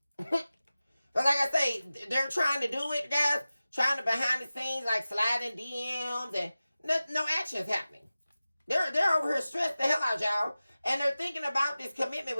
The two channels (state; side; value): inverted; both; correlation -0.96